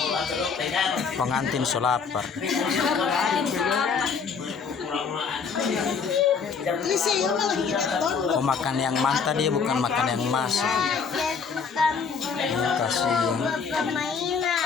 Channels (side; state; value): right; quieter; 5.7 dB